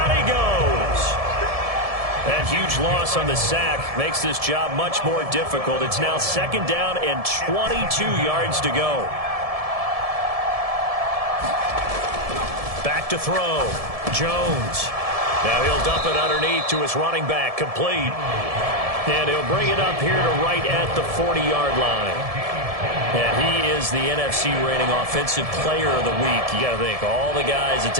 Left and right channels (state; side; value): late; left; 1.7 ms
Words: he goes. That huge loss on the sack makes this job much more difficult. It's now 2nd down and 22 yards to go. Back to throw. Jones. Now he'll dump it underneath to his running back. Complete. And he'll bring it up here to right at the 40-yard line. And he is the NFC rating offensive player of the week. You got to think, all the guys that